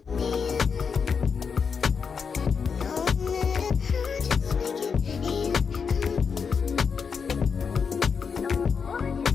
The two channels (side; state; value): right; quieter; 6.0 dB